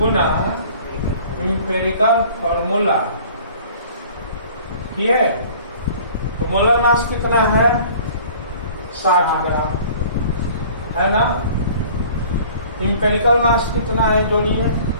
इंपेरिकल फॉर्मूला। ये तो मोलर मास कितना है? 60 ग्राम है ना। इंपेरिकल मास कितना है? जोड़िए।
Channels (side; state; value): both; inverted; correlation -0.49